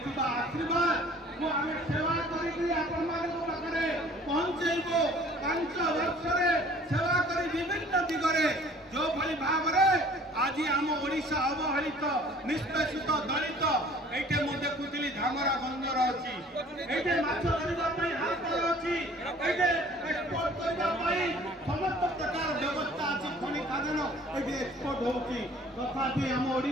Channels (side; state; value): both; normal; correlation 0.52